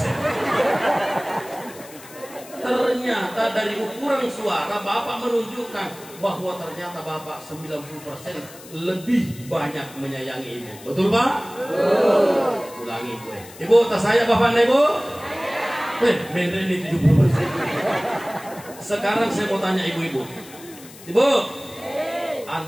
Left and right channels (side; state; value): left; noise; hiss, 19 dB below the sound